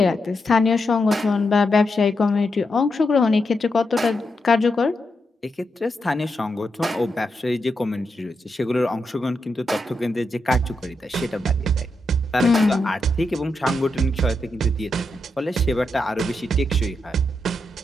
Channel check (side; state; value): both; normal; correlation 0.84